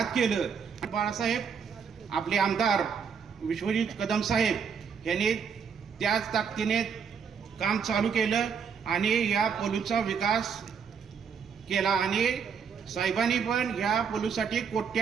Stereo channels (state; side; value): quieter; left; 6.6 dB